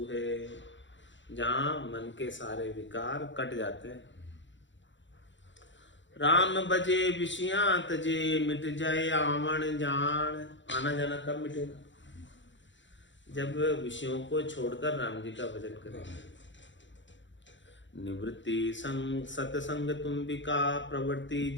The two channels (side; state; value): right; late; 0.54 ms